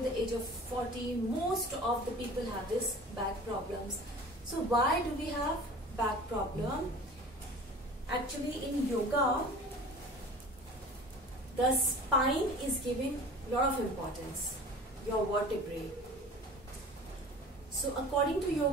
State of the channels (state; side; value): normal; both; correlation 0.41